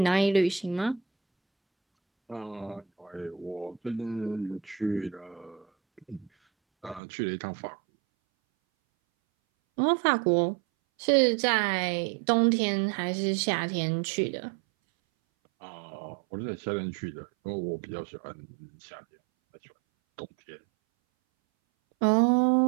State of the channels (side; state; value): left; drops out; at 7.0 s